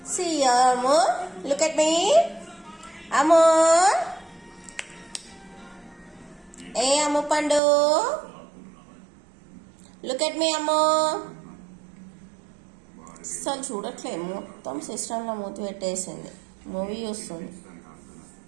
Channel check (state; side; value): drops out; left; at 7.6 s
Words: See Amu, look at me. Amu, hey Amu Pandu, look at me Amu. అసలు చూడట్లేదు, మొత్తం సిస్టంలో మూతి పెట్టేసింది. మూవీ చూస్తుంది.